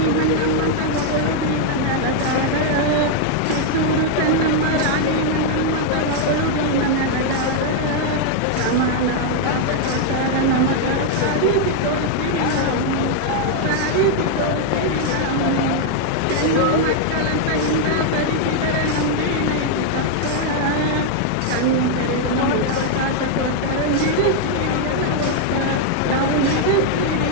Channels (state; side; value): different; both; correlation 0.00